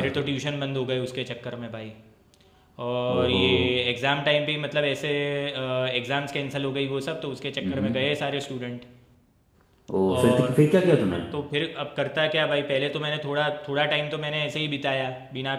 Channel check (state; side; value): identical; both; correlation 1.00